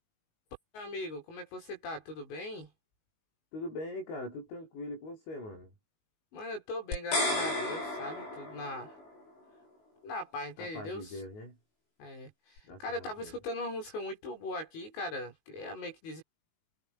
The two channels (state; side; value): late; right; 19 ms